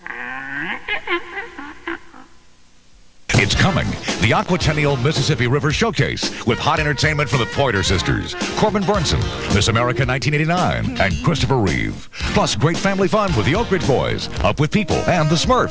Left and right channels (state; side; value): identical; both; correlation 1.00